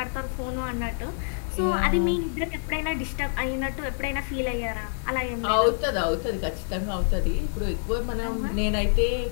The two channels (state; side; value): silent; right; digital silence